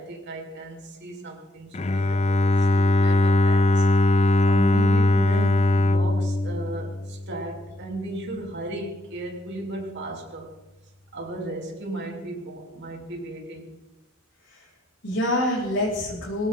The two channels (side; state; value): both; normal; correlation 0.75